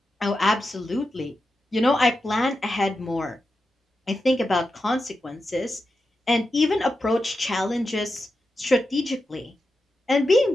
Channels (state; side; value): normal; both; correlation 0.89